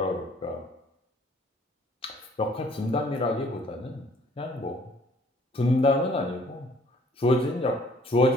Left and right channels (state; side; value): normal; both; correlation 0.59